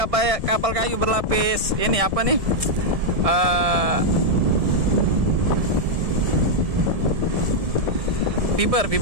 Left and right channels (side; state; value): left; late; 1.6 ms